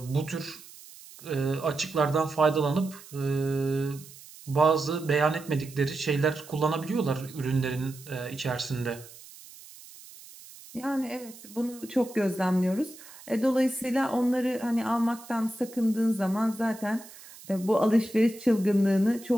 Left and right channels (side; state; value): right; noise; hiss, 19 dB below the sound